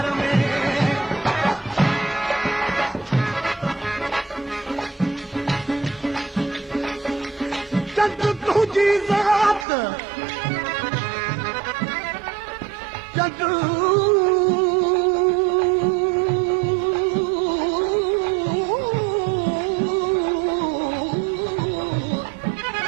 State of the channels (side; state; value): left; drops out; at 9.7 s